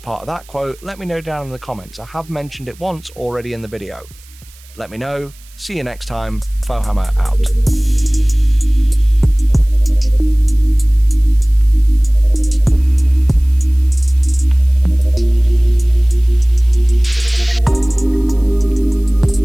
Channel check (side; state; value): right; noise; hiss, 26 dB below the sound